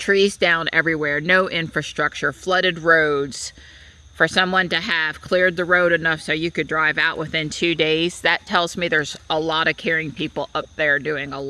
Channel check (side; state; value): both; identical; correlation 1.00